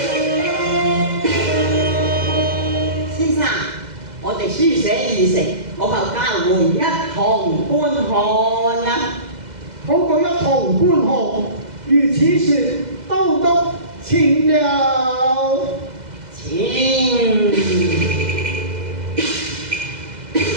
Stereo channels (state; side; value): late; left; 2.0 ms